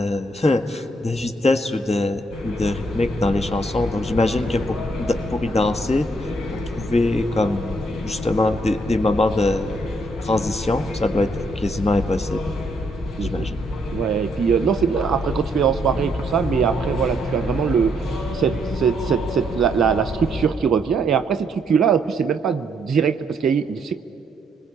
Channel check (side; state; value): both; normal; correlation 0.72